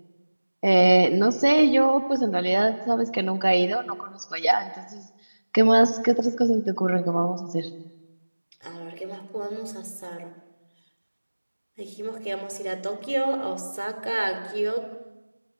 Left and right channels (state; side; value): inverted; both; correlation -1.00